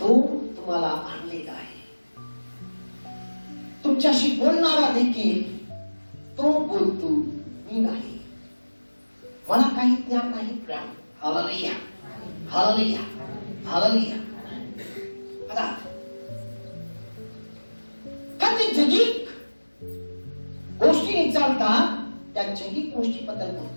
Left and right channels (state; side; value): inverted; both; correlation -1.00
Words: तो तुम्हाला आणलेला आहे. तुमच्याशी बोलणारा देखील तो बोलतो, मी नाही, मला काही ज्ञान नाही. प्रियानो, हालेलुया, हालेलुया, हालेलुया. आता काही जगिक गोष्टी चालतात, त्या जगिक गोष्टीबद्दल